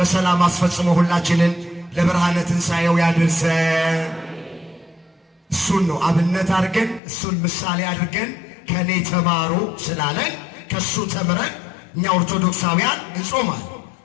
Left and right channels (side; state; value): right; drops out; at 7.0 s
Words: አስፈጽሞ ሁላችንን ለብርሃነ ትንሣኤው ያድርሰን። እሱን ነው አብነት አድርገን እሱን ምሳሌ አድርገን ከኔ ተማሩ ስላለን ከሱ ተምረን እኛ ኦርቶዶክሳውያን እንጾማል።